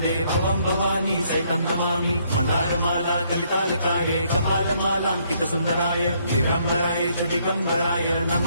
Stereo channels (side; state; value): both; inverted; correlation -0.69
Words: भवम भवानी सहितं नमामि मंदारमाला कलितालकार्ये कपालमालांकित सुंदराय दिव्यंबराय च दिगंबराय